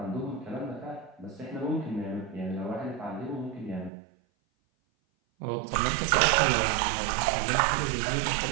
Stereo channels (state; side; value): drops out; left; at 3.9 s